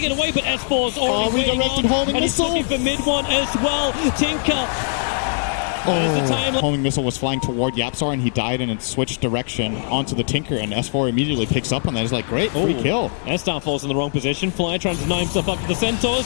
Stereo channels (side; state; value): right; silent; 64 dB below the other